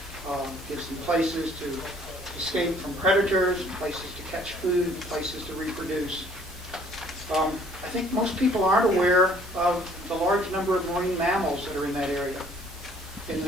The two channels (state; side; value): normal; both; correlation 0.58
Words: gives them places to escape from predators, places to catch food, places to reproduce. I think most people aren't aware of the large number of marine mammals that are in that area. In the